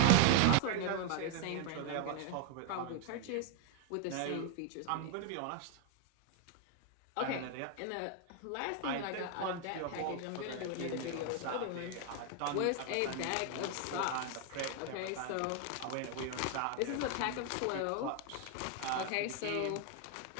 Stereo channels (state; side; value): different; both; correlation 0.00